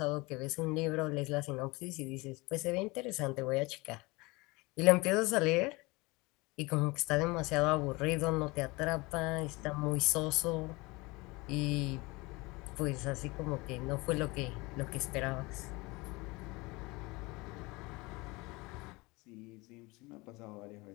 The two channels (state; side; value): quieter; right; 24.0 dB